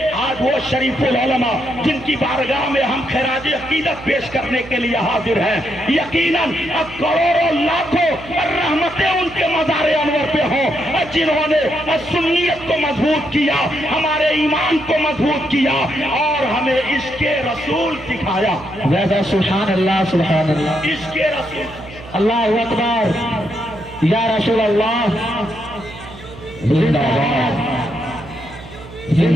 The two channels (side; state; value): right; noise; hum, 17 dB below the sound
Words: آج وہ شریف العلماء جن کی بارگاہ میں ہم خراج عقیدت پیش کرنے کے لیے حاضر ہیں، یقیناً کروڑوں لاکھوں رحمتیں ان کے مزار انور پہ ہوں، جنہوں نے سنیت کو مضبوط کیا، ہمارے ایمان کو مضبوط کیا اور ہمیں عشق رسول سکھایا۔ سبحان اللہ سبحان اللہ، عشق رسول، اللہ اکبر، یا رسول اللہ زندہ باد